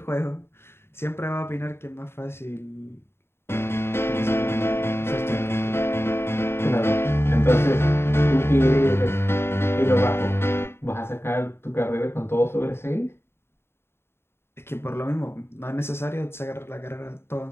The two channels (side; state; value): right; late; 0.12 ms